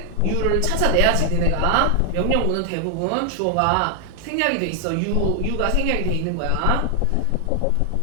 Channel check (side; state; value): both; different; correlation 0.00